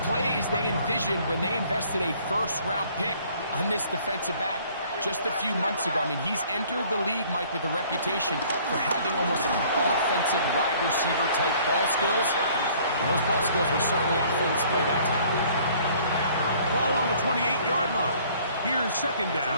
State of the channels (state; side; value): inverted; both; correlation -0.57